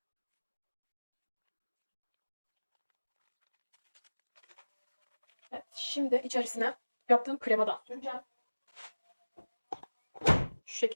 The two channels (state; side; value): inverted; both; correlation -1.00